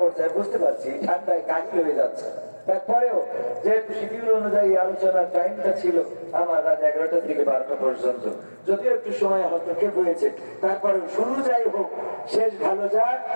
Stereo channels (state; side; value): inverted; both; correlation -1.00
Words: বুঝতে পারছি ঠান্ডায় কাহিল হয়ে যাচ্ছে তারপরেও যেহেতু শিডিউল অনুযায়ী আলোচনার টাইমটা ছিল আমার রাত 11টা থেকে 12টা পর্যন্ত যদিও একটু সময় হস্তক্ষেপ হয়েছে তারপরে শুরু যাই হোক শেষ ভালো যাক